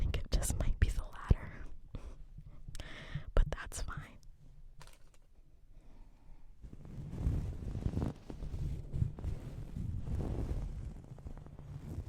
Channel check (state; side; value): identical; both; correlation 1.00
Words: it just might be the latter, but that's fine.